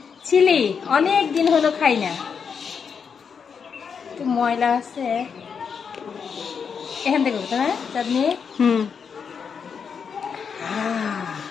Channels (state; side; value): quieter; right; 6.4 dB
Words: ছিলি অনেক দিন হলো খাই না, একটু ময়লা আছে এখান থেকে। হ্যাঁ চাঁদনি,